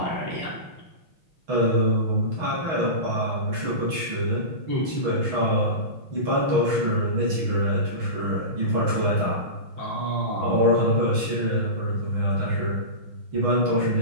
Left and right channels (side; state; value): left; late; 6.3 ms